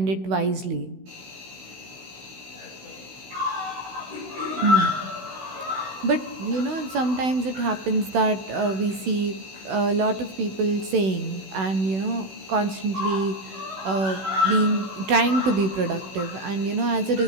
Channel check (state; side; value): late; left; 16 ms